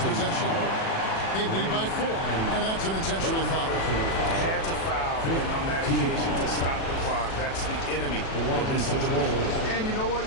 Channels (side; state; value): right; late; 37 ms